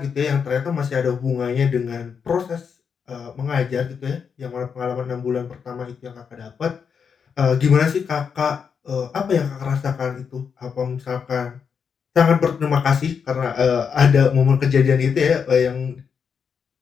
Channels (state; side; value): quieter; right; 6.5 dB